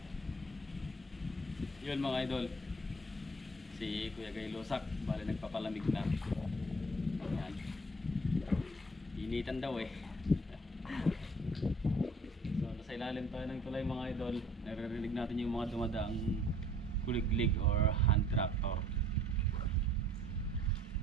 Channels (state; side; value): normal; both; correlation 0.54